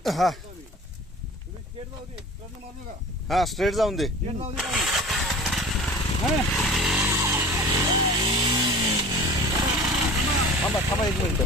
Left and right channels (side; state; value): both; normal; correlation 0.40